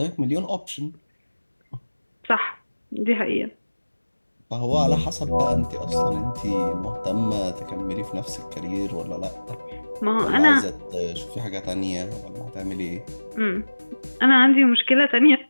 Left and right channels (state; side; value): inverted; both; correlation -1.00